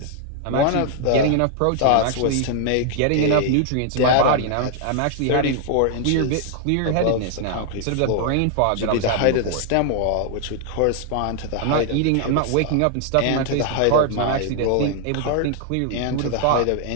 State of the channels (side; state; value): both; different; correlation 0.00